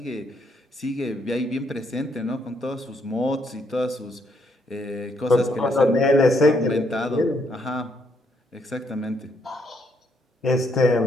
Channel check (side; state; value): both; normal; correlation 0.73